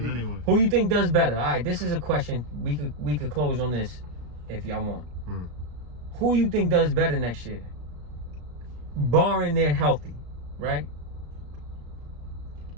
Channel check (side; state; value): left; late; 34 ms